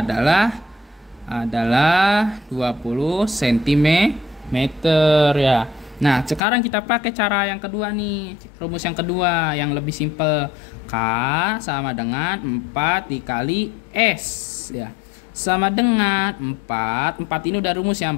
20 cm ya. Nah, sekarang kita pakai cara yang kedua nih. Rumus yang kedua yang lebih simpel. K sama dengan 4 dikali S ya. Sama dengan 4 ini udah rumus ya.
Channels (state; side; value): drops out; right; at 6.4 s